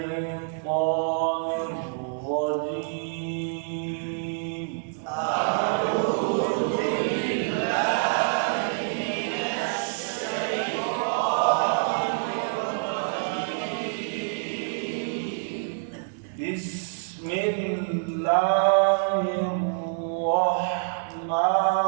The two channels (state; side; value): silent; left; 60 dB below the other